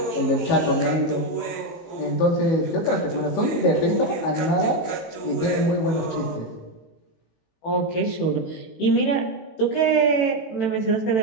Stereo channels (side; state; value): right; late; 18 ms